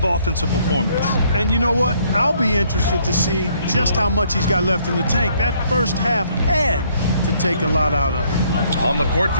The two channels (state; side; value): inverted; both; correlation -0.66